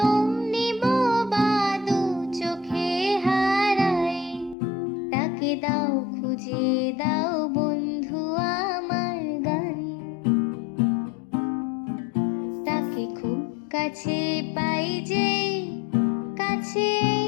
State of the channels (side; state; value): right; drops out; at 4.5 s